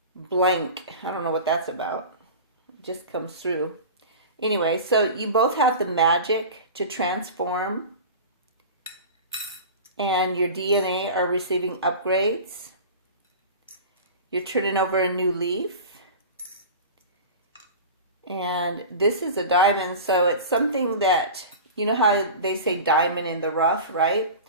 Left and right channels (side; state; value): both; inverted; correlation -0.34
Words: blank. I don't know what that's about. It just comes through. Anyway, so you both have the magic to transform, and your DNA are receiving upgrades. You're turning over a new leaf. And this is a diamond, so it's something that, you know how they say diamond in the rough, right?